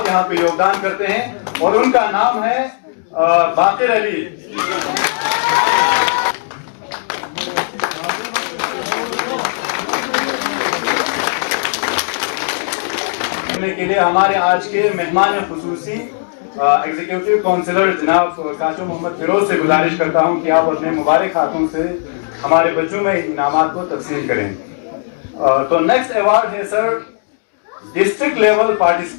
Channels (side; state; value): right; silent; digital silence